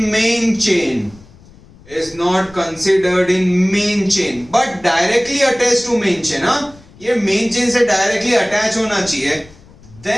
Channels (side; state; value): left; noise; rumble, 24 dB below the sound